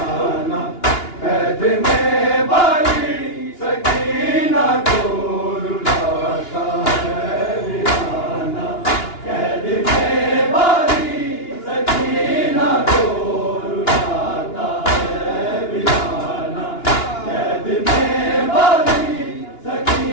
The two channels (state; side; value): late; right; 2.9 ms